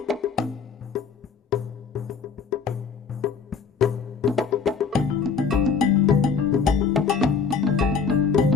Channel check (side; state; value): right; quieter; 5.8 dB